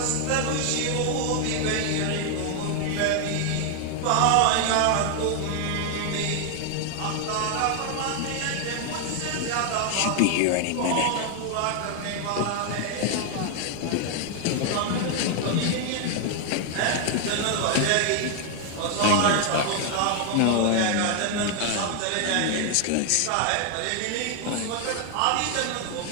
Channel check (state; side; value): different; both; correlation 0.00